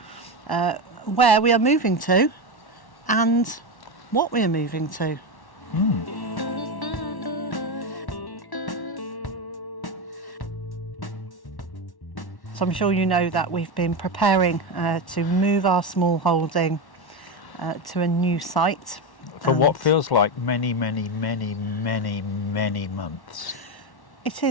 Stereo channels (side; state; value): right; late; 1.1 ms